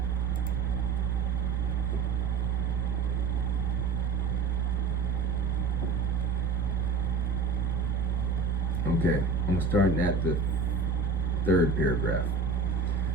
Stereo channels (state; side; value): quieter; left; 4.5 dB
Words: Okay, I'm starting at the third paragraph